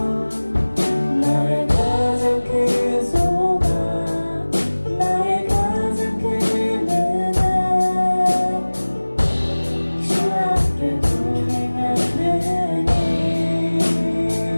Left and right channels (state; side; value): inverted; both; correlation -1.00